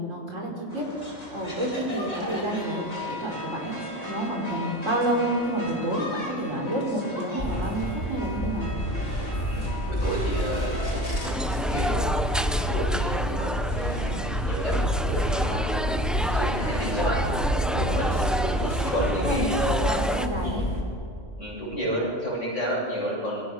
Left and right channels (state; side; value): normal; both; correlation 0.38